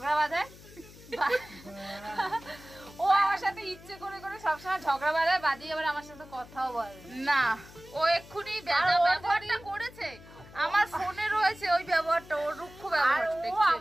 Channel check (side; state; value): left; noise; hum, 20 dB below the sound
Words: বাঁধায়। ও আমার সাথে ইচ্ছে করে করে সবসময় ঝগড়া বাঁধায়, বাদিয়ে আবার আমার সাথে কথাও বলে না। ও এক্ষুনি ব্যবহারটা করেছে, আমার ফোনে রয়েছে ওই ব্যবহারটা, ওর রুক্ষ ব্যবহার। ও